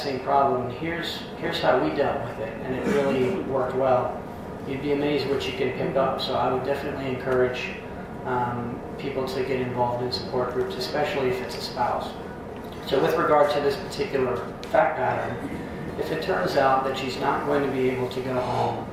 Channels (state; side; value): identical; both; correlation 1.00